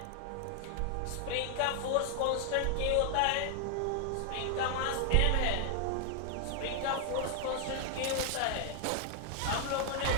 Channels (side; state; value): both; different; correlation 0.00